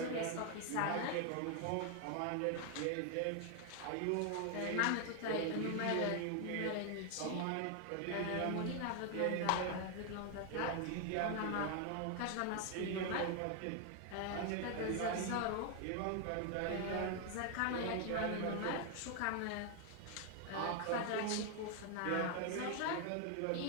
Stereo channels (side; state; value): both; different; correlation 0.00